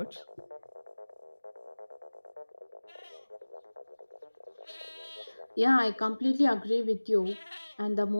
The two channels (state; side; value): inverted; both; correlation -1.00